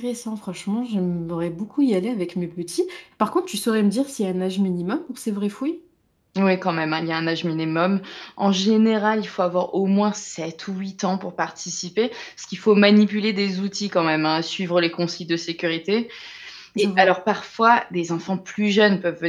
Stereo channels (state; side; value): identical; both; correlation 1.00